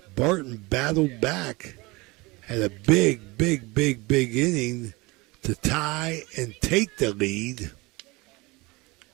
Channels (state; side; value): quieter; left; 23.8 dB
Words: Barton battled back, had a big inning to tie and take the lead.